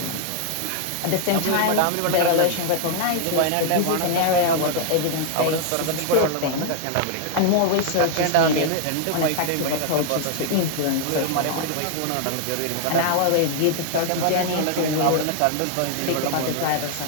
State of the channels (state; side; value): different; both; correlation 0.00